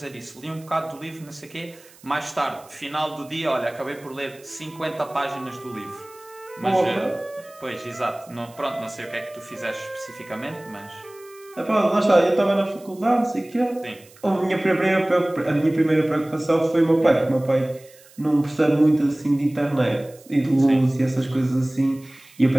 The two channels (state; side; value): noise; right; hiss, 25 dB below the sound